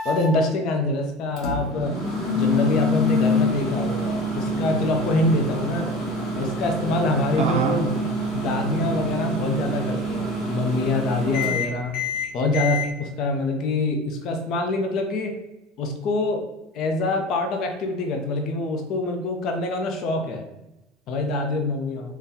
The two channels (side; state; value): both; normal; correlation 0.34